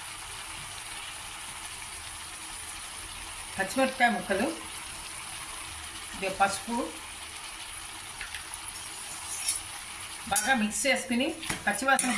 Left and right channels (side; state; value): both; identical; correlation 1.00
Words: పచ్చిమిరపకాయ ముక్కలు, పసుపు బాగా మిక్స్ చేసుకుని పచ్చివాసన